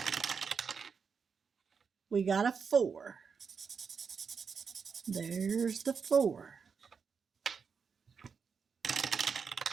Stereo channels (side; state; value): left; quieter; 5.9 dB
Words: We got a 4. There's the 4.